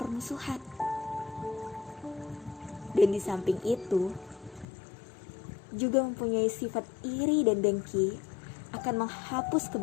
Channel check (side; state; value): right; drops out; at 4.7 s